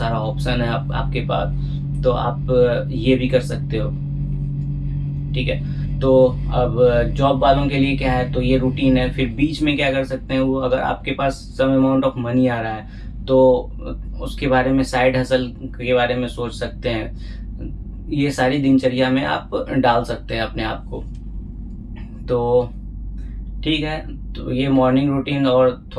ऑप्शन है आपके पास, तो आप ये भी कर सकते हो। ठीक है, तो अब जॉब वालों के लिए क्या है, तो ये रूटीन है। फिर बीच में क्या कर सकते हैं वो, अगर आपके पास सम अमाउंट ऑफ मनी आ रहा है तो उसके बारे में, साइड हसल के बारे में सोच सकते हैं। ये सारी दिनचर्या में आप डाल सकते हैं अपने आप को। तो ठीक है, तो ये मॉर्निंग रूटीन और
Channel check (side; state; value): both; identical; correlation 1.00